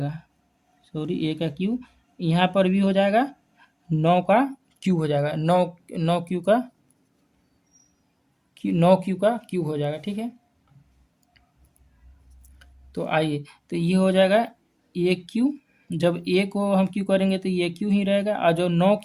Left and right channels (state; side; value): identical; both; correlation 1.00